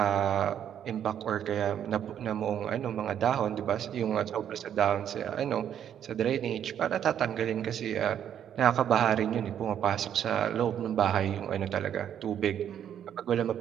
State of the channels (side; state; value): left; quieter; 9.5 dB